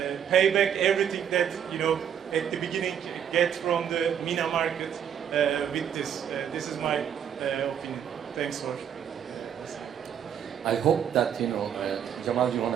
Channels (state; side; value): quieter; left; 8.7 dB